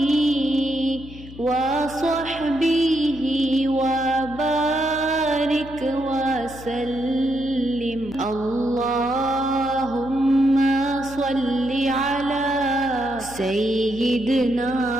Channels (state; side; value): noise; left; hum, 16 dB below the sound